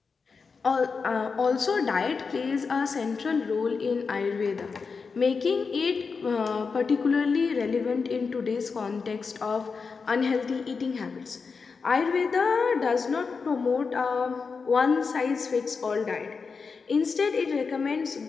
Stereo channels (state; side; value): quieter; right; 5.0 dB